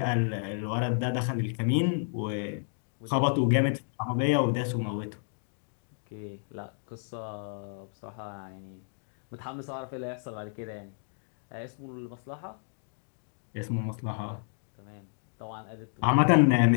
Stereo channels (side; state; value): right; silent; digital silence